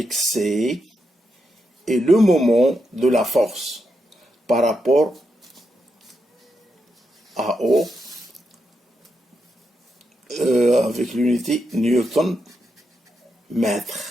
C est le moment de la force par rapport à O avec l'unité Newton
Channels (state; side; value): normal; both; correlation 0.84